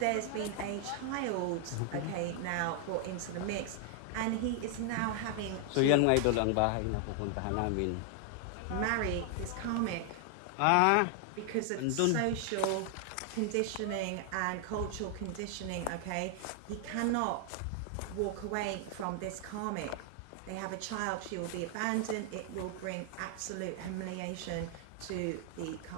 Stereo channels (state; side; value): different; both; correlation 0.00